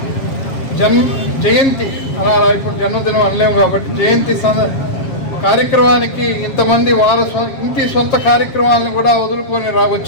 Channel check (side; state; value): right; late; 7.4 ms